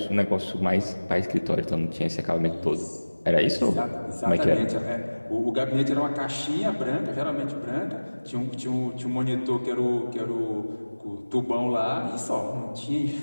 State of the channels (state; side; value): inverted; both; correlation -1.00